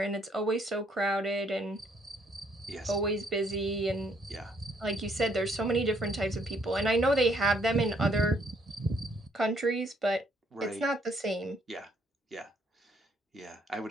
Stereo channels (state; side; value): normal; both; correlation 0.68